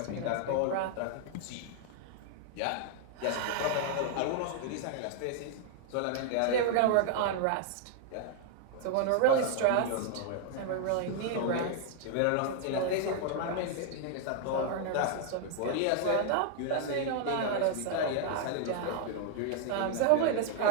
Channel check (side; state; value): both; different; correlation 0.00